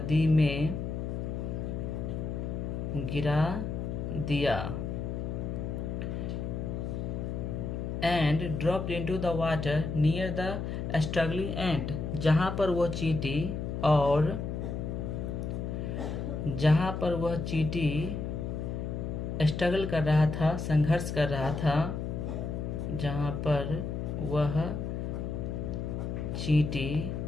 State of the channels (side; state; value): left; noise; hum, 3 dB below the sound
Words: दिया, and dropped into the water near the struggling ant, जहाँ पर वह चींटी स्ट्रगल कर रहा था, संघर्ष कर रहा था, जहाँ पर वह चींटी